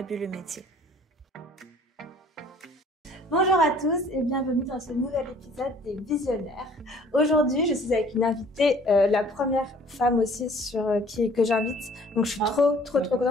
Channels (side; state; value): both; normal; correlation 0.54